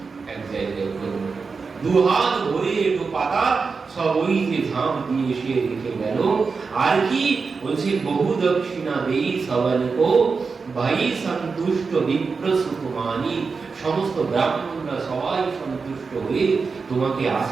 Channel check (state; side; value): quieter; left; 4.8 dB